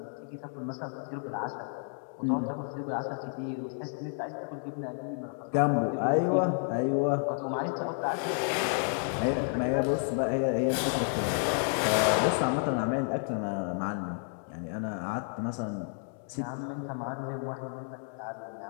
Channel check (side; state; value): right; silent; 57 dB below the other